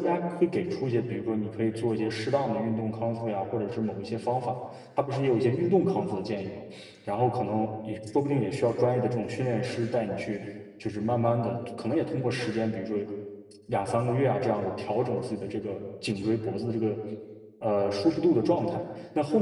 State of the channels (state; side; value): identical; both; correlation 1.00